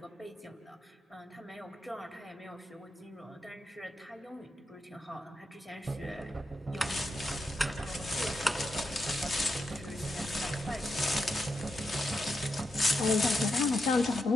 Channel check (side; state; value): both; normal; correlation 0.85